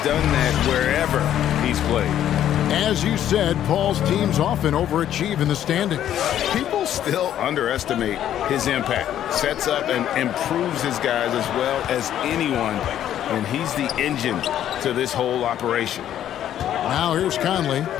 done that wherever he's played. As you said, Paul's teams often overachieve in the standings. People still underestimate his impact. Sets up and improves his guys as well as anyone. And he's the engine to this whole operation. Now here's Conley.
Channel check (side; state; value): right; quieter; 11.1 dB